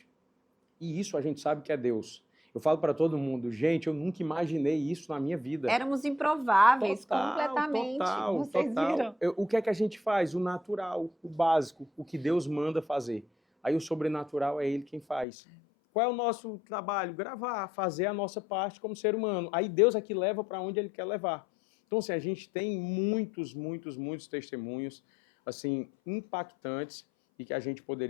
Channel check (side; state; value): right; drops out; at 15.2 s